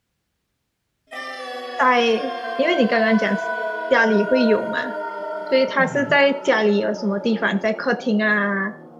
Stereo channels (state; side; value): identical; both; correlation 1.00